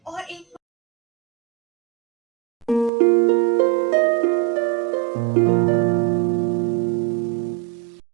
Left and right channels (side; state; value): left; drops out; at 2.9 s